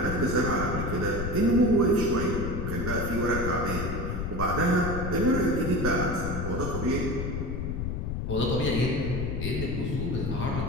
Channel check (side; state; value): left; noise; rumble, 3 dB below the sound